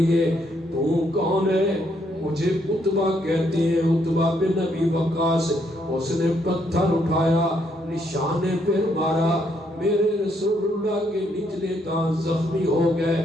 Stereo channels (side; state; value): both; normal; correlation 0.73